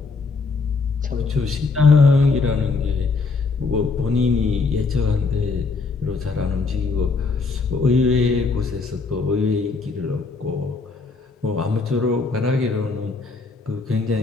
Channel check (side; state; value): right; quieter; 4.2 dB